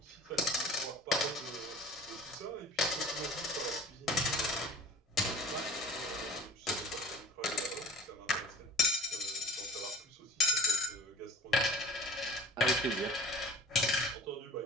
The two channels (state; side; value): normal; both; correlation 0.41